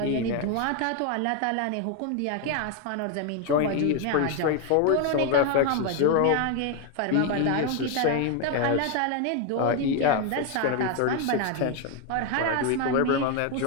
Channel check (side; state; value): both; different; correlation 0.01